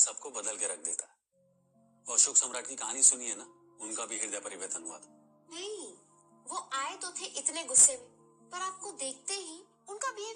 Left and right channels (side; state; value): both; identical; correlation 1.00